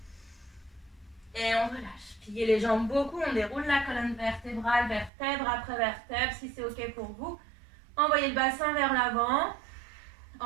Et on relâche. Pliez les jambes beaucoup. On déroule la colonne vertébrale, vertèbre après vertèbre, si c'est OK pour vous. Envoyez le bassin vers l'avant.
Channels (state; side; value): drops out; left; at 5.1 s